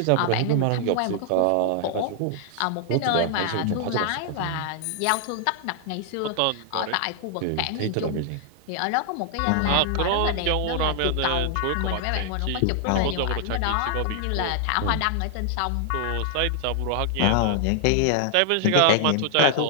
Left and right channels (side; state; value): both; different; correlation -0.01